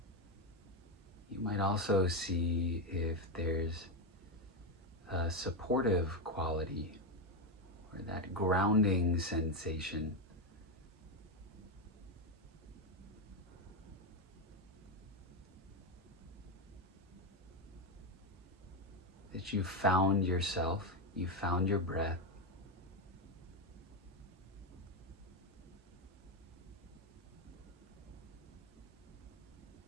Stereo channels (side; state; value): both; normal; correlation 0.09